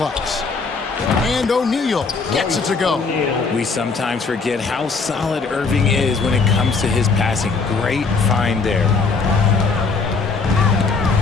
And O'Neal gets it to go. We sometimes forget how solid Irving is when it comes to his passing. Great find there.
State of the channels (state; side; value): quieter; right; 4.5 dB